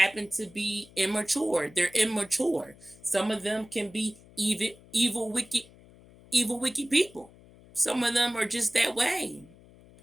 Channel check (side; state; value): left; noise; hum, 24 dB below the sound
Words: to be immature. They're immature. Some of them can be wicked people. Some of them are just that way.